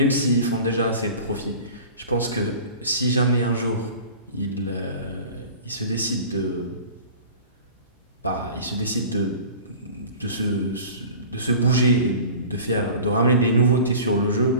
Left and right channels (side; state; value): both; inverted; correlation -0.40